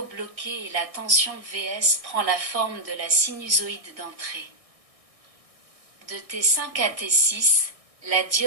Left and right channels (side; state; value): left; late; 1.6 ms